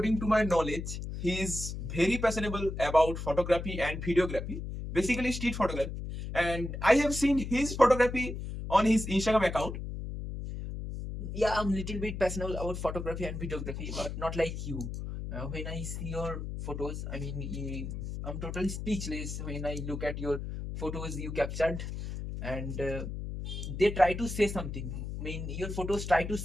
to my knowledge, he is very passionate about photography and videography, basically street photography. And I have seen his photography on his Instagram account. Yeah, I'm a little bit passionate about photography and videography, but not like you. When I see your photos, I'm totally speechless when I look at your photos you captured, and they try to say something. Your photos try to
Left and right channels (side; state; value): left; noise; hum, 6 dB below the sound